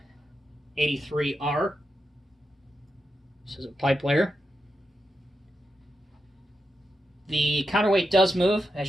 This is a pipe layer. The counterweight does move,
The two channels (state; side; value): normal; both; correlation 0.87